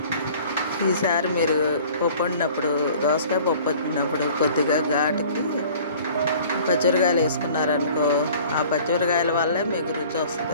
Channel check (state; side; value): inverted; both; correlation -0.49